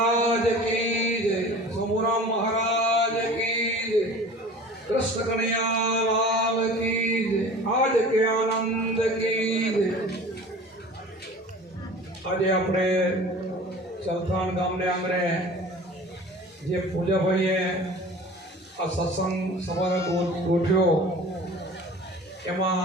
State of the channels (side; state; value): both; normal; correlation 0.42